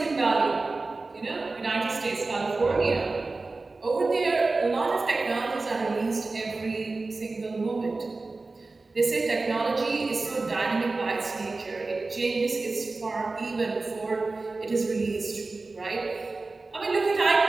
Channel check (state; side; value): quieter; left; 3.5 dB